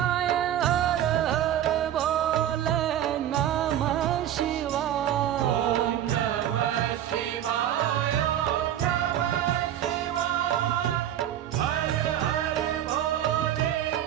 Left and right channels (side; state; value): left; quieter; 11.2 dB